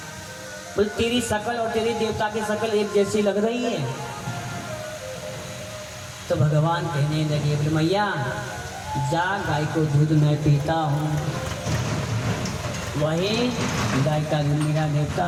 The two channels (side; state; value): both; identical; correlation 1.00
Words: बोले तेरी शकल और तेरी देवता की शकल एक जैसी लग रही है। तो भगवान कहने लगे, बोले मैया जा गाय को दूध मैं पीता हूँ, वही गाय का दूध मेरा